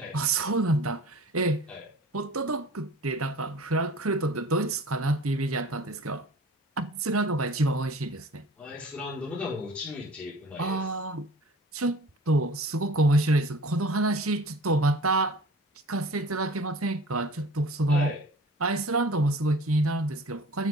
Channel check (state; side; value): normal; both; correlation 0.44